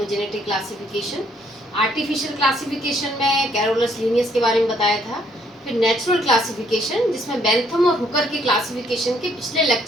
classification. Artificial classification में कैरोलस लीनियस के बारे में बताया था। फिर नेचुरल क्लासिफिकेशन जिसमें बेंथम और हुकर के क्लासिफिकेशन के पिछले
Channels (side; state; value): both; normal; correlation 0.68